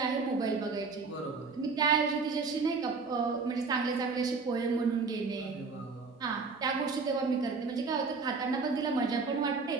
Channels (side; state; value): left; quieter; 4.5 dB